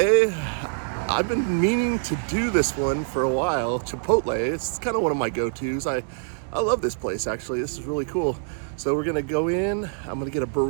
I've been meaning to do this one for a while. Chipotle, it's kind of one of my go-tos. I love this place, actually. This is really cool. So we're gonna go in, I'm gonna get a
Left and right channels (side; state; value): left; silent; 62 dB below the other